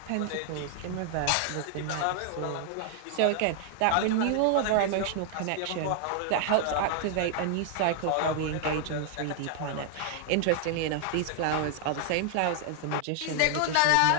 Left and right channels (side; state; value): both; different; correlation 0.00